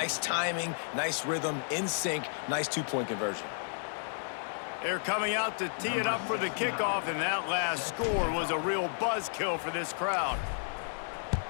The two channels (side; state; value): right; silent; 56 dB below the other